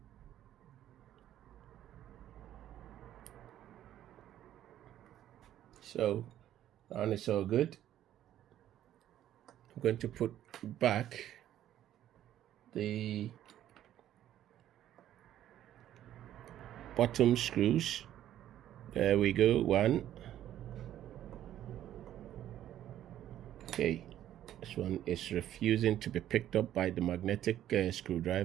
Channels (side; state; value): left; quieter; 11.9 dB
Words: So and it's all good. I'm going to put back the bottom screws. There we go, one. Okay, this one is refusing to be picked up by the magnetic